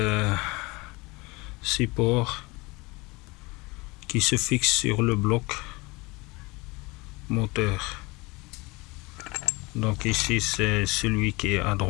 support qui se fixe sur le bloc moteur. Donc ici c'est celui qui est à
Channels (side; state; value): right; quieter; 24.5 dB